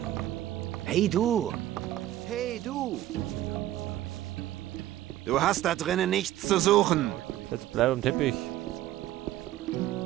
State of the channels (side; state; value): left; quieter; 13.9 dB